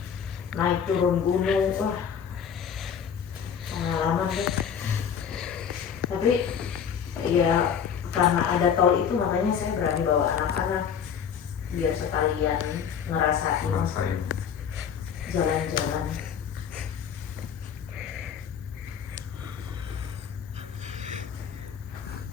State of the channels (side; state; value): right; quieter; 7.7 dB